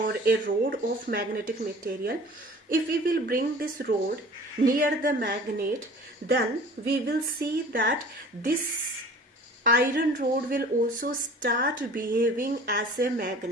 a rod of magnetic material. If we will bring this rod near the magnet, then we will see that this iron rod will also start behaving as a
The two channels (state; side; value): normal; both; correlation 0.45